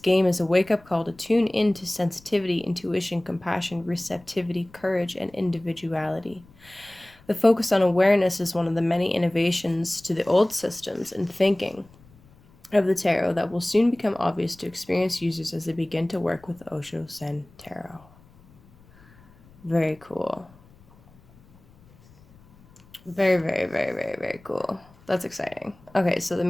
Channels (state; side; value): noise; left; rumble, 27 dB below the sound